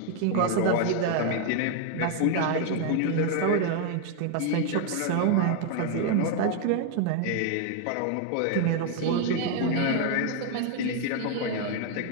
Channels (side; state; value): both; different; correlation 0.00